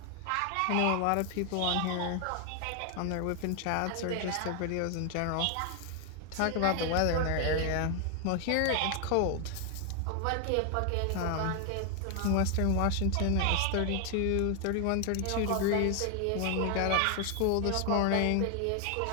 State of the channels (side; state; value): both; different; correlation 0.00